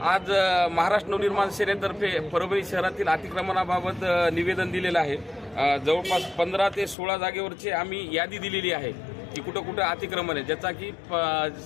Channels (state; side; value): drops out; right; at 7.0 s